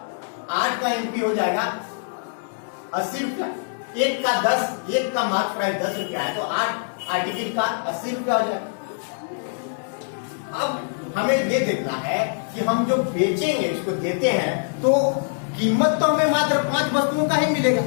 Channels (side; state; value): right; silent; digital silence